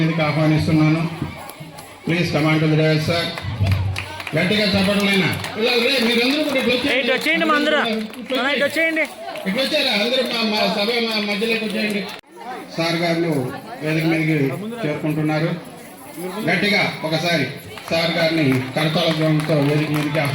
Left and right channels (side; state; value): both; identical; correlation 1.00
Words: ఆహ్వానిస్తున్నాను. Please command to the dais sir. గట్టిగా చెప్పడలేనా మీరందరూ కూడా ఇట్లా వచ్చారా? అందరూ మా సభ మధ్యలోకి వచ్చేయండి. సార్ గారు వేదిక మీదకి చేరుకుంటున్నారు. గట్టిగా ఒకసారి సార్ గారిని కరతాళ ధ్వనితో వేదిక మీదకి